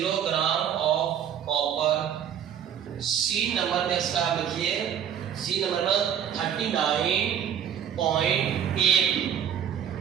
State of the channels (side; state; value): left; quieter; 8.9 dB